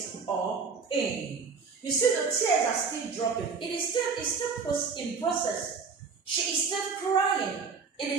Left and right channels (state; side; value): quieter; left; 5.2 dB